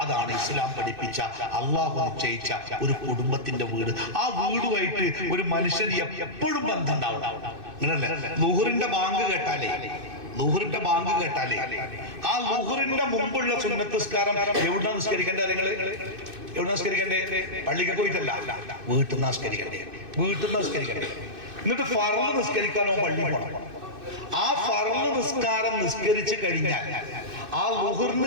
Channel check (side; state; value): left; late; 2.6 ms